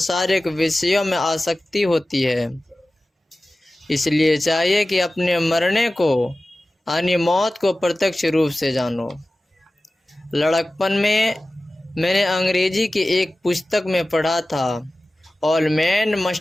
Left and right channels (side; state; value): both; normal; correlation 0.96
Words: विषयों में आसक्ति होती है। इसलिए चाहिए कि अपने मरने को यानी मौत को प्रत्यक्ष रूप से जानो। लड़कपन में मैंने अंग्रेजी की एक पुस्तक में पढ़ा था, ऑल मैन